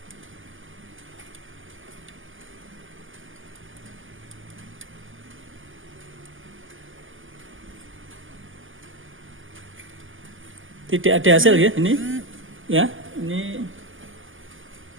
Tidak ada hasil ya ini, ya ini,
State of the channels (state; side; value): late; left; 0.58 ms